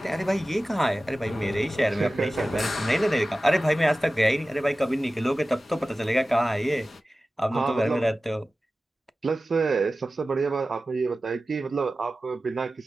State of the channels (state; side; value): normal; both; correlation 0.95